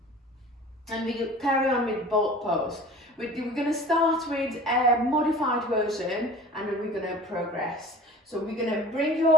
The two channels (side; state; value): both; normal; correlation 0.42